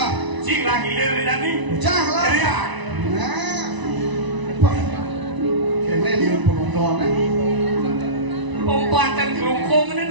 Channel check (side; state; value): left; late; 1.0 ms